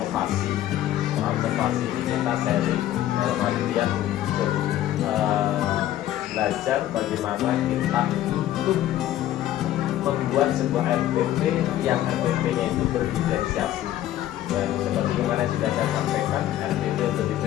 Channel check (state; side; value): quieter; right; 13.1 dB